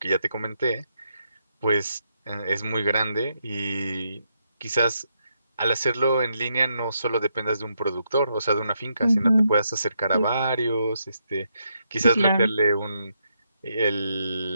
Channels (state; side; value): inverted; both; correlation -0.80